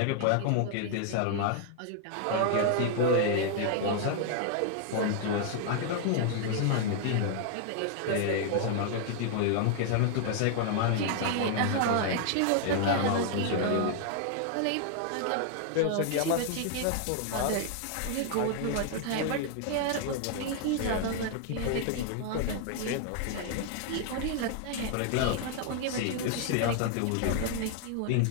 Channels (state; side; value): different; both; correlation 0.00